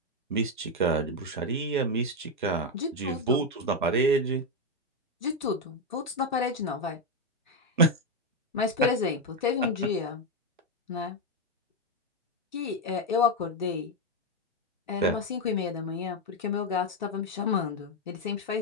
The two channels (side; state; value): both; normal; correlation 0.05